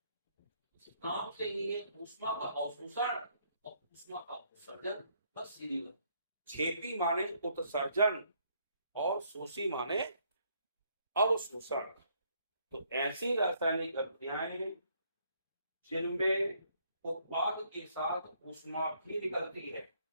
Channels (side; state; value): both; inverted; correlation -0.69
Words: नाम से ही है ऊष्मा का अवशोषण और ऊष्मा का उत्सर्जन, बस सीधी बात। क्षेपी माने उत्सर्जन और शोषी माने अवशोषण। तो ऐसी रासायनिक अभिक्रियाएं जिनमें उत्पाद के साथ ऊष्मा भी निकलती है,